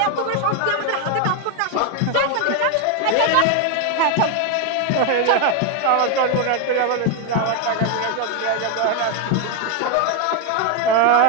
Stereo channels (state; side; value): different; both; correlation 0.01